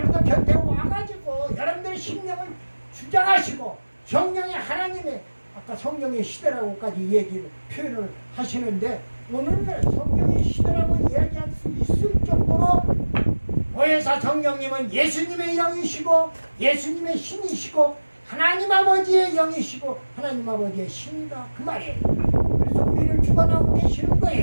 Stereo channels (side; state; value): both; inverted; correlation -1.00